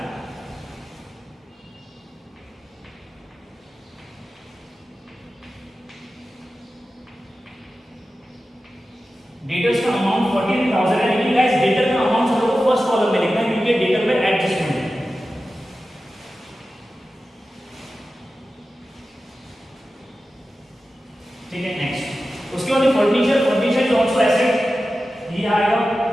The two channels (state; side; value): normal; both; correlation 0.94